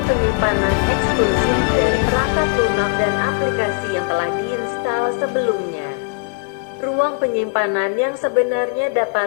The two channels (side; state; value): right; quieter; 36.2 dB